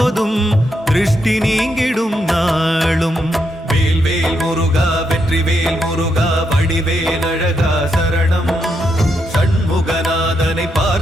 திருஷ்டி நீங்கிடும் நாளும். வேல்வேல் முருகா வெற்றிவேல் முருகா வடிவேல் அழகா சரணம். சண்முகநாதனை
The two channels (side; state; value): both; normal; correlation 0.81